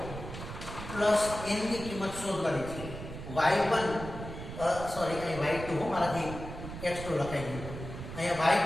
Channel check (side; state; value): right; noise; rumble, 10 dB below the sound